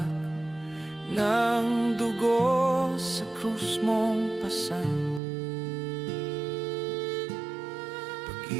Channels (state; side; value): drops out; left; at 5.2 s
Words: ng dugo sa krus mong pasan.